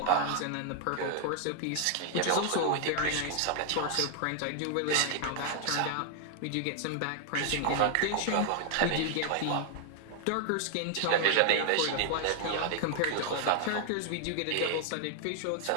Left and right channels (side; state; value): both; different; correlation 0.00